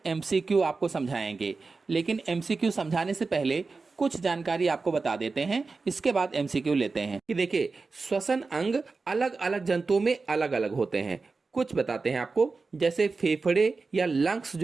एमसीक्यू आपको समझाएंगे, लेकिन एमसीक्यू समझाने से पहले कुछ जानकारी आपको बता देते हैं, इसके बाद एमसीक्यू लेते हैं। कि देखिए, श्वसन अंग अलग अलग जंतुओं में अलग अलग होते हैं। कुछ बताते हैं आपको, जैसे फेफड़े या लंग्स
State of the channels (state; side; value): quieter; left; 4.1 dB